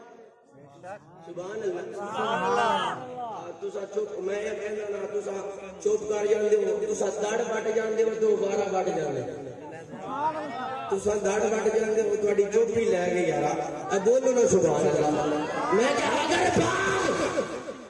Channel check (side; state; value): both; identical; correlation 1.00